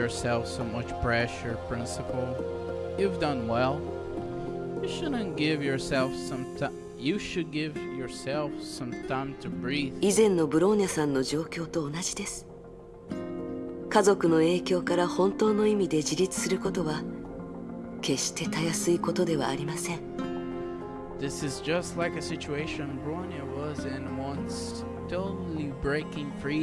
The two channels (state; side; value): identical; both; correlation 1.00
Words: so much pressure, Principal. You've done well. You shouldn't give yourself some time. You should give yourself some time to breathe. 以前のブローニャさんの状況と同じです。家族の影響から本当の意味で自立することは決してたやすいことではありません。This is just like a situation Bronya was in once, totally breaking